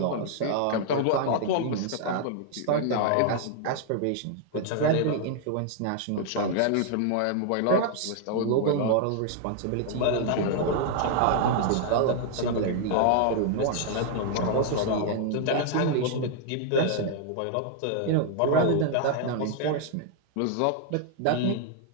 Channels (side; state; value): both; different; correlation 0.00